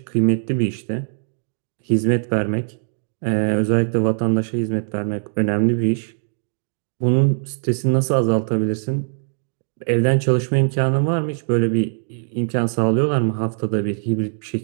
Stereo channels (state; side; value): silent; left; digital silence